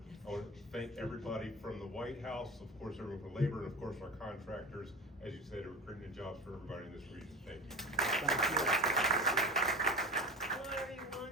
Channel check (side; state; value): both; normal; correlation 0.31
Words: I want to thank everybody from the White House, of course everyone for labor, and of course our contractors, as you said, are creating jobs for everybody in this region. Thank you. Hello